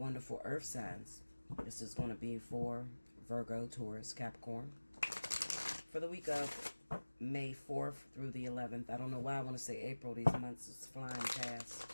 earth signs. This is going to be for Virgo, Taurus, Capricorn. For the week of May 4th through the 11th. I don't know why I want to say April. These months is flying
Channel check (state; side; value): inverted; both; correlation -1.00